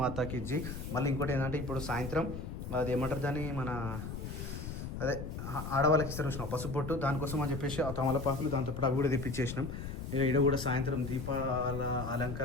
జీ. మళ్ళీ ఇంకోటి ఏంటంటే ఇప్పుడు సాయంత్రం అది ఏమంటారు దాన్ని, మన అదే ఆడవాళ్ళకి ఇస్తారు చూసినాం పసుపొట్టు, దానికోసం అని చెప్పేసి ఆ తమలపాకులు దాంతోపాటు అవి కూడా తెప్పించేసినాం. ఇక ఇక్కడ కూడా సాయంత్రం దీపాల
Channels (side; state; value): left; noise; rumble, 6 dB below the sound